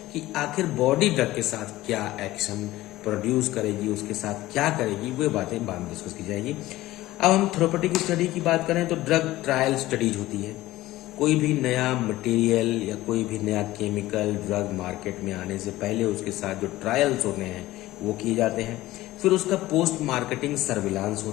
कि आखिर बॉडी ड्रग के साथ क्या एक्शन प्रोड्यूस करेगी, उसके साथ क्या करेगी, वो बातें बाद में डिस्कस की जाएगी। अब हम थेरेप्यूटिक स्टडी की बात करें तो ड्रग ट्रायल स्टडीज होती है। कोई भी नया मटेरियल या कोई भी नया केमिकल ड्रग मार्केट में आने से पहले उसके साथ जो ट्रायल्स होते हैं वो किए जाते हैं। फिर उसका पोस्ट मार्केटिंग सर्विलांस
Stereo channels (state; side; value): quieter; right; 16.9 dB